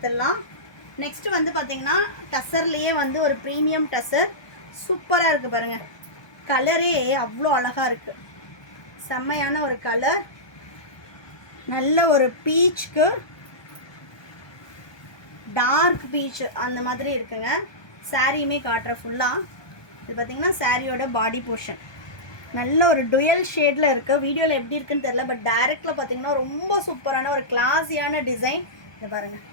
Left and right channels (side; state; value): right; late; 1.2 ms